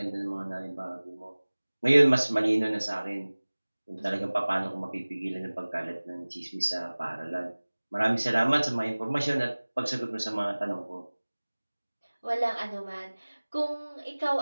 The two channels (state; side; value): inverted; both; correlation -1.00